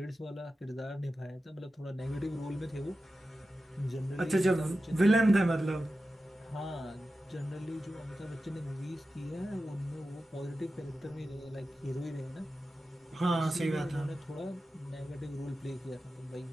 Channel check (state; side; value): normal; both; correlation 0.93